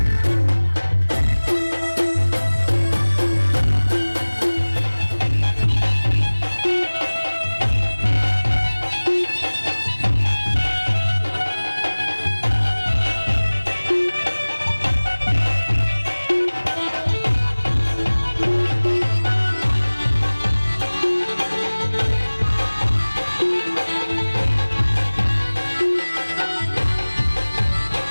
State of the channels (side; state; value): both; inverted; correlation -1.00